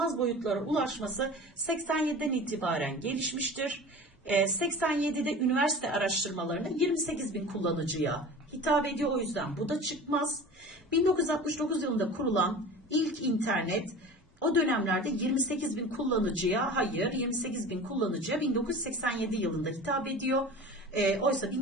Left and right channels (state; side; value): normal; both; correlation 0.37